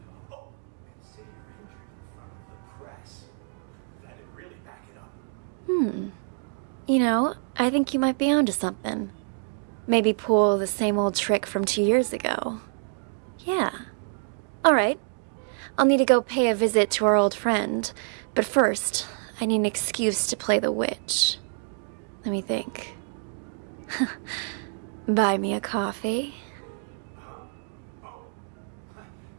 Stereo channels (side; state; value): left; silent; 60 dB below the other